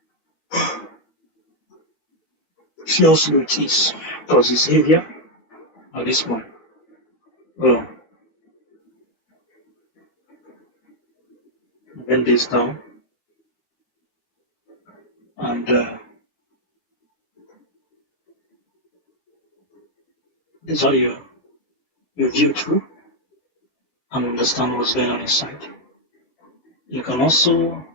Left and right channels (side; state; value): right; late; 12 ms